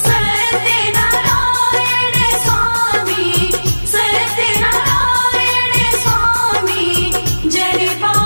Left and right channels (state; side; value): inverted; both; correlation -1.00